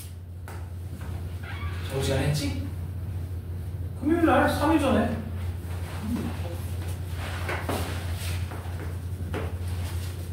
저번 시간에 했지? 금요일날 3일 전에.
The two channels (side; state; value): both; identical; correlation 1.00